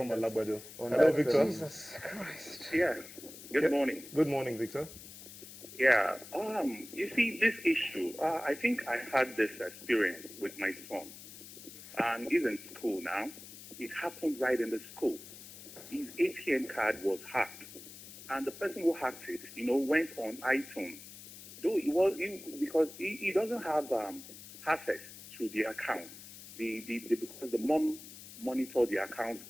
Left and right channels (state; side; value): noise; left; hiss, 15 dB below the sound